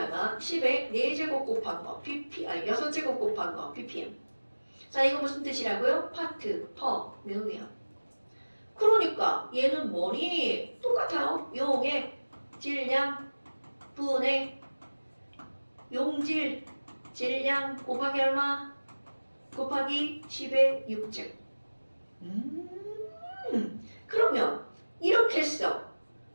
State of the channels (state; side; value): inverted; both; correlation -1.00